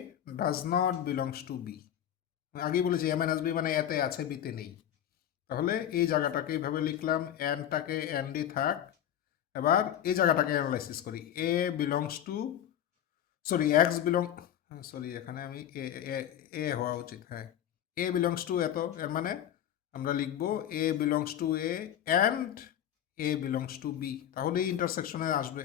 does not belongs to b. আগেই বলেছি এ মাইনাস বি মানে এতে আছে বিতে নেই, তাহলে এই জায়গাটাকে এইভাবে লিখলাম, অ্যান্ডটাকে অ্যান্ডই থাক। এবার এই জায়গাটাকে অ্যানালাইসিস করি, a belongs to, sorry x belong, sorry এখানে আমি এ এ এ হওয়া উচিত, হ্যাঁ এ বিলংস টু এত, এর মানে আমরা লিখবো a belongs to a and a belongs to b, তাহলেই ইন্টারসেকশনে আসবে,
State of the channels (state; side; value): quieter; right; 10.6 dB